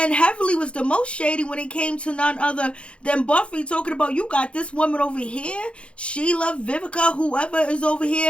Heavily was the most shady when it came to none other than Buffy, talking about, you got this woman over here, Sheila, Vivica, whoever is over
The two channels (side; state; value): right; late; 0.059 ms